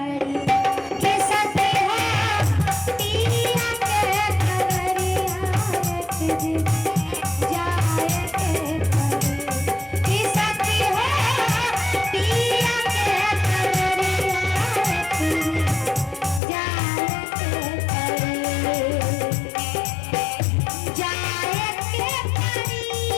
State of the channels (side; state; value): right; drops out; at 16.4 s